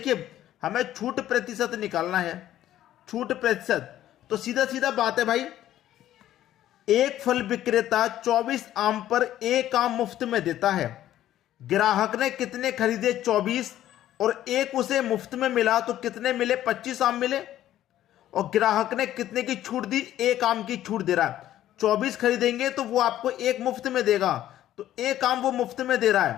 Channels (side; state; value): right; quieter; 12.7 dB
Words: हमें छूट प्रतिशत निकालना है। छूट प्रतिशत तो सीधा सीधा बात है भाई, एक फल विक्रेता 24 आम पर एक आम मुफ्त में देता है। ग्राहक ने कितने खरीदे? 24, और एक उसे मुफ्त में मिला तो कितने मिले? 25 आम मिले। और ग्राहक ने कितने की छूट दी? एक आम की छूट दे रहा है। 24 खरीदेंगे तो वो आपको एक मुफ्त में देगा, तो एक आम वो मुफ्त में दे रहा